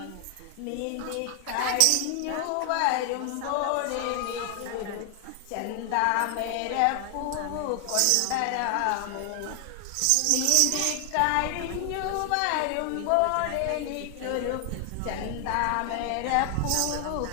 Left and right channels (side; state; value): both; different; correlation 0.00